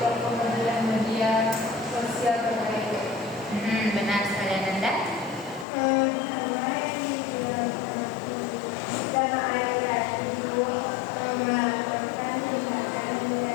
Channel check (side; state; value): right; drops out; at 5.7 s